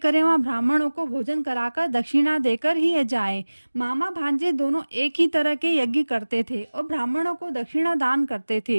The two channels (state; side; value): inverted; both; correlation -1.00